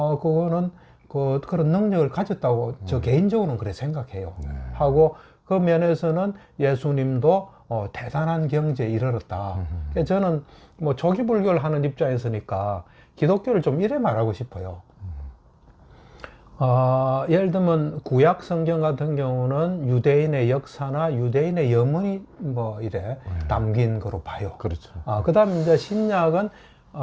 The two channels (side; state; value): both; identical; correlation 1.00